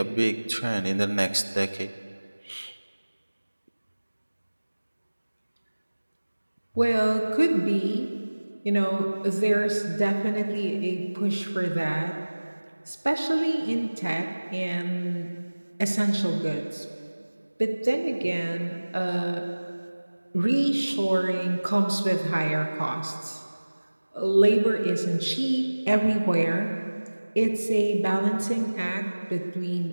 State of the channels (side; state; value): both; inverted; correlation -1.00